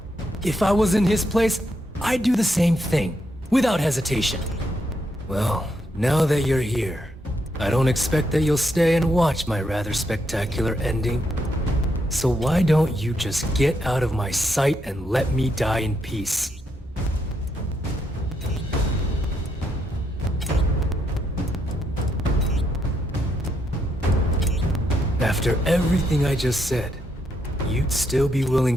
If I was in his place, I'd do the same thing, without hesitation. Well, now that you're here, I don't expect that you'll stay and watch my rather spectacular ending. So why don't you just get out of my sight and let me die in peace? After everything I just said, you'd still be willing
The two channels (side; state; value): both; normal; correlation 0.78